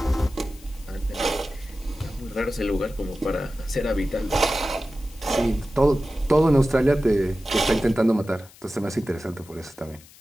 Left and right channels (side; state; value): left; noise; hiss, 23 dB below the sound